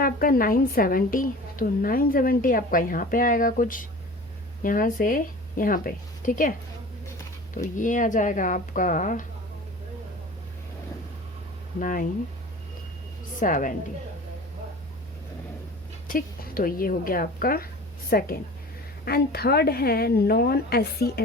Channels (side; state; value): both; normal; correlation 0.40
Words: आपका 970. तो 970 आपका यहाँ पे आएगा कुछ यहाँ से यहाँ पे, ठीक है. तो ये आ जाएगा आपका 970, ठीक. तो ये हो गया आपका सेकेंड. एंड थर्ड है नॉन SC